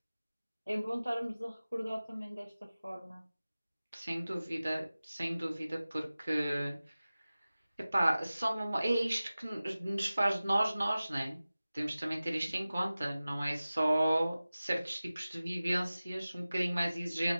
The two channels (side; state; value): both; inverted; correlation -0.97